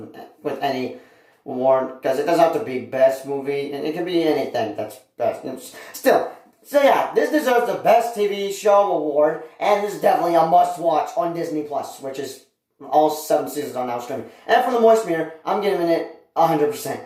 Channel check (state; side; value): identical; both; correlation 1.00